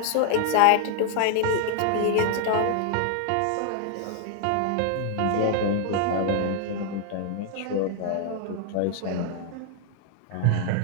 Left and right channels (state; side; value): different; both; correlation 0.00